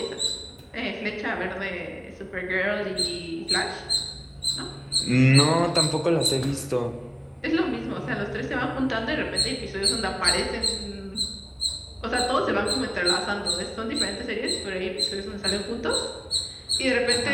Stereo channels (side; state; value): both; identical; correlation 1.00